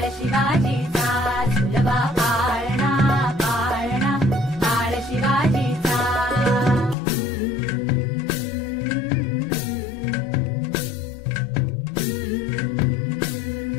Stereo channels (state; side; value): drops out; right; at 7.0 s